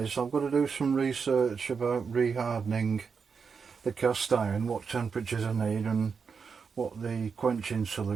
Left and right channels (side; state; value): left; quieter; 5.7 dB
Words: I've got to do some research about rehardening the cast iron, what temperatures I need and what the quenching